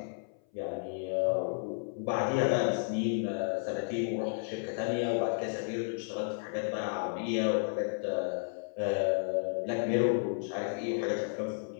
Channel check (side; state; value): right; silent; 56 dB below the other